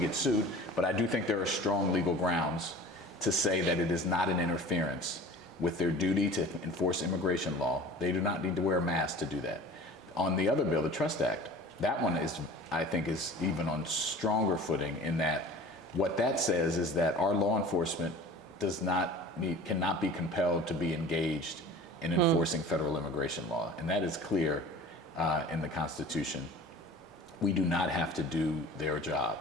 sued, but I do think there are strong legal grounds to say that it is not an interference with their duty to enforce immigration law. They do not need to wear a mask to do that. On the other bill, the Trust Act, that one I think is even on stronger footing, in that what that says is that our law enforcement cannot be compelled to be engaged in enforcing federal immigration law. And that is clear in the Constitution. We do not have to do their job.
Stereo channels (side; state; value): both; normal; correlation 0.42